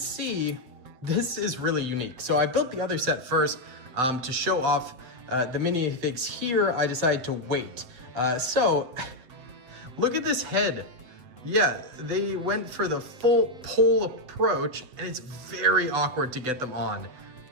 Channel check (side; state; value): left; late; 7.7 ms